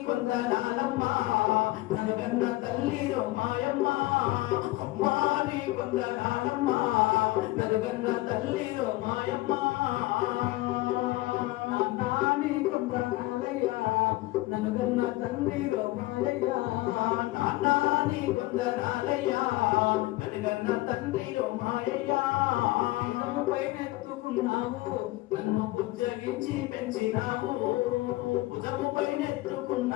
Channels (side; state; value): right; quieter; 19.0 dB